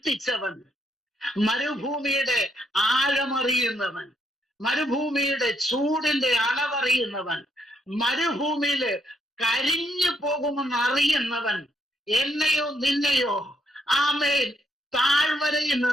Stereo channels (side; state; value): both; normal; correlation 0.75